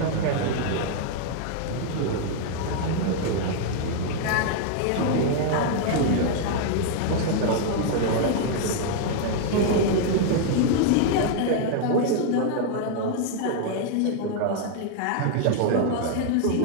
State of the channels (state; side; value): different; both; correlation 0.00